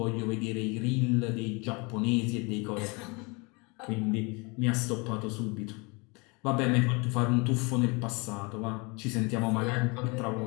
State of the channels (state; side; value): quieter; right; 29.1 dB